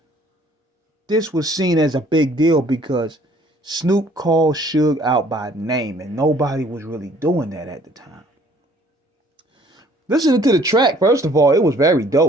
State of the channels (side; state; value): both; normal; correlation 0.58